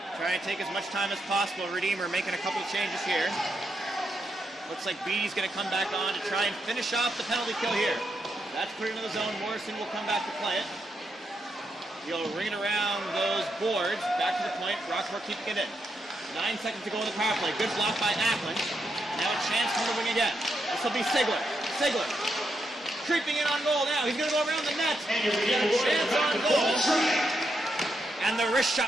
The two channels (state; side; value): normal; both; correlation 0.82